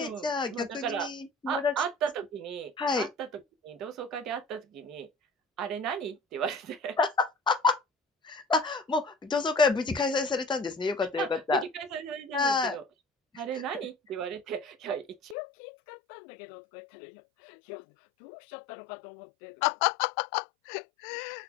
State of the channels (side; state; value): right; drops out; at 15.4 s